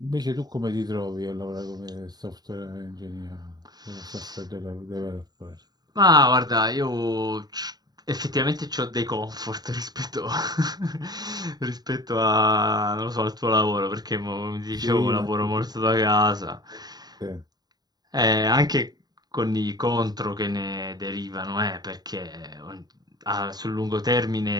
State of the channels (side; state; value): left; late; 0.19 ms